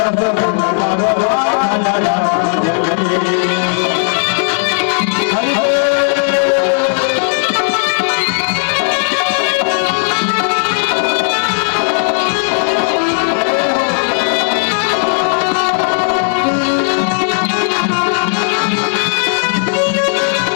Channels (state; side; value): silent; right; digital silence